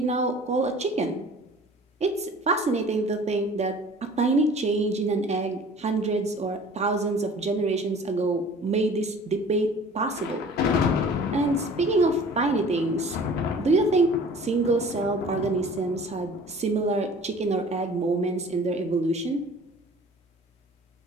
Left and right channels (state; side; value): normal; both; correlation 0.47